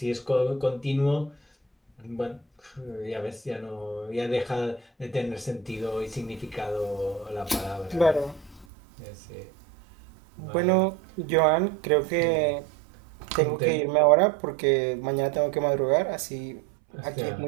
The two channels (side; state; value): left; drops out; at 8.7 s